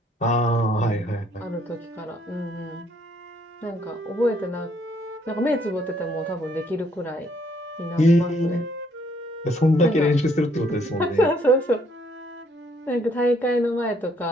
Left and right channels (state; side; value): normal; both; correlation 0.67